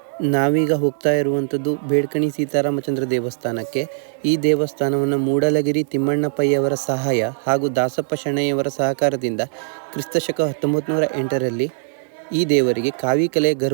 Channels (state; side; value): silent; left; digital silence